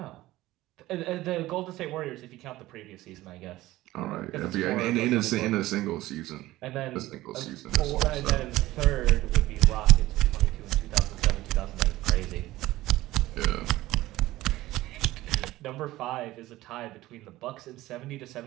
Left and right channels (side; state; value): left; quieter; 16.9 dB